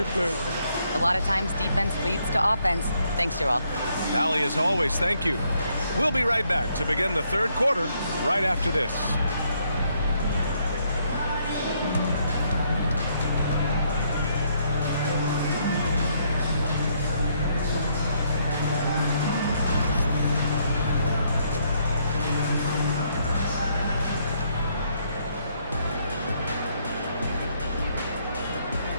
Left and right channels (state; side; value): inverted; both; correlation -0.72